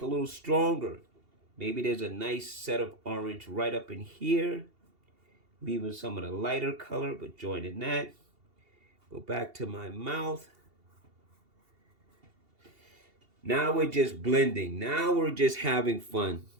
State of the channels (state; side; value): late; left; 2.8 ms